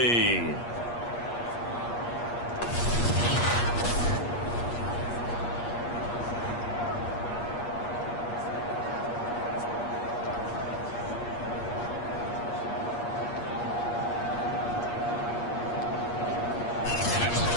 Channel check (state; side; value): late; right; 8.5 ms